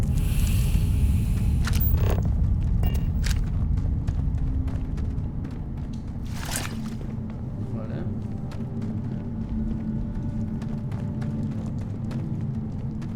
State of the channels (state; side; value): identical; both; correlation 1.00